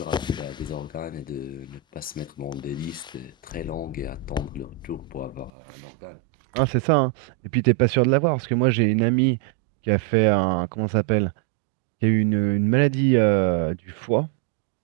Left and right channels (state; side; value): drops out; left; at 5.5 s